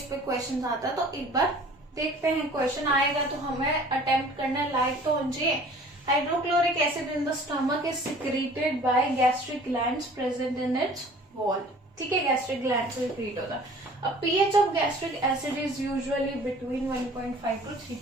पे क्वेश्चन आता, तो एक बार देखते हैं, क्वेश्चन आएगा तो हमें अटेम्प्ट करना, लाइक तो होना चाहिए। Hydrochloric acid in the stomach is secreted by gastric glands present in its wall. ठीक है, gastric glands से secrete होता है। अब pH of gastric acid is usually between 1.5 to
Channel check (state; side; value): normal; both; correlation 0.49